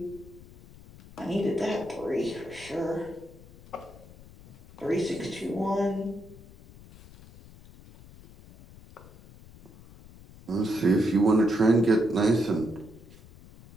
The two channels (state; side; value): noise; left; rumble, 21 dB below the sound